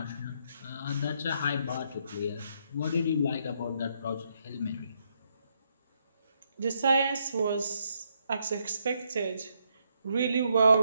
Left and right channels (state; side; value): inverted; both; correlation -0.75